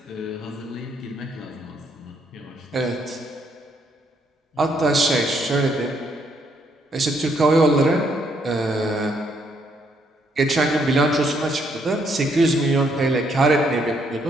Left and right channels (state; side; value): normal; both; correlation 0.72